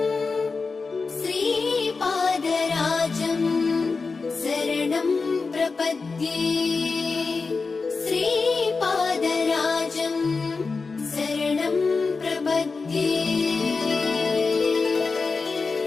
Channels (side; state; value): right; quieter; 4.4 dB